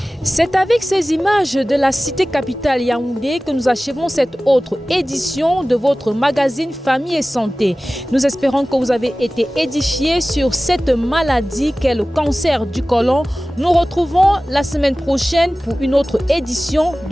C'est avec ces images de la cité capitale Yaoundé que nous achevons cette autre édition de votre magazine Famille et Santé. Nous espérons que vous avez été édifiés sur cette maladie qu'est le cancer du côlon. Nous retrouvons la semaine prochaine pour une autre édition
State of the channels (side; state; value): both; normal; correlation 0.97